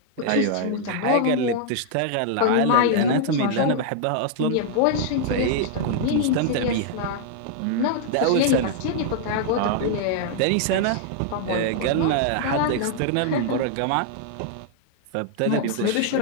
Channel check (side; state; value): both; different; correlation -0.01